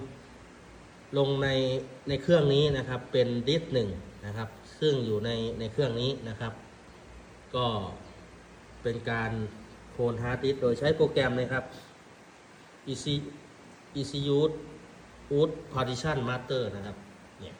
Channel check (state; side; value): identical; both; correlation 1.00